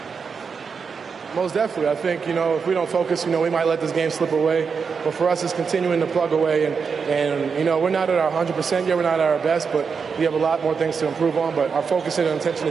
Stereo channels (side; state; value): left; quieter; 5.7 dB